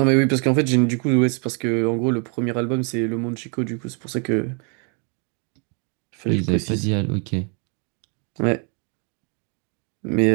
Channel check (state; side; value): quieter; left; 37.4 dB